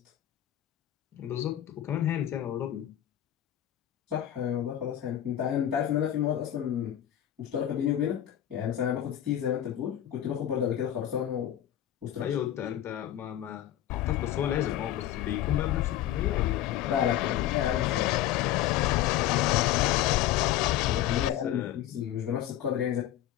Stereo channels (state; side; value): quieter; right; 11.9 dB